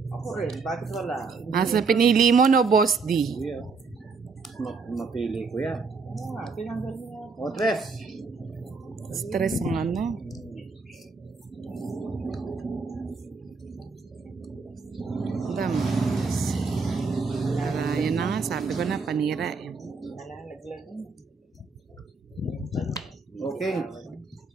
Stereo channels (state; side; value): quieter; left; 4.6 dB